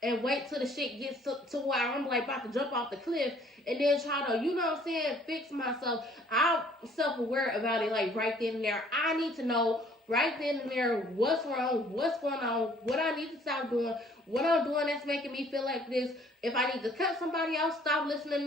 and wait till the shit gets to where I'm like about to jump off the cliff and then try to, you know what I'm saying, fix myself. I'm self-aware about it like right then and there. I need to know right then and there what's wrong, what's going on, what I need to stop doing, what I'm doing that's making me feel like this. If I need to cut somebody else, stop listening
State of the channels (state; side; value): normal; both; correlation 0.58